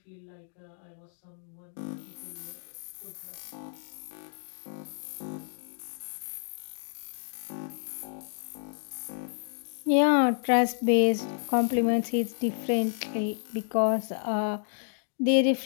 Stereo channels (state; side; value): silent; right; digital silence